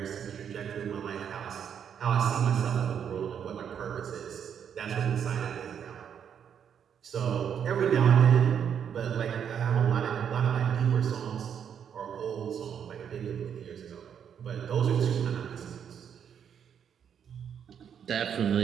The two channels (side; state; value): left; quieter; 8.2 dB